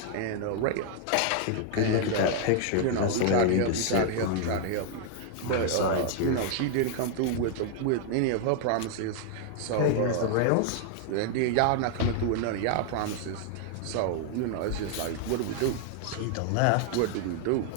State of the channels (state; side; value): different; both; correlation 0.00